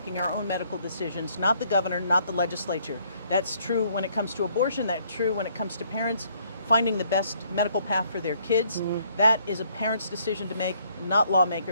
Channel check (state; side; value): inverted; both; correlation -0.66